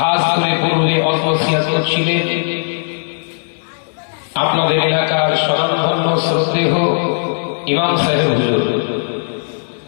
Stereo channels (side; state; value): right; silent; digital silence